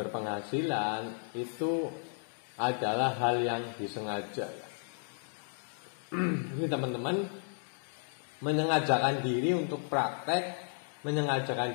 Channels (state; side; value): silent; right; 55 dB below the other